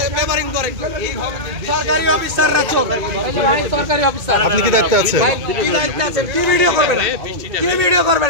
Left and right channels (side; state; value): left; late; 2.2 ms